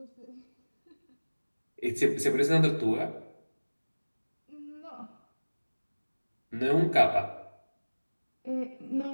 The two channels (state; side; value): inverted; both; correlation -1.00